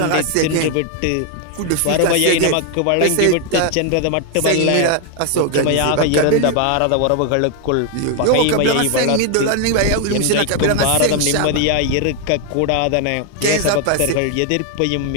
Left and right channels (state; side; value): different; both; correlation 0.00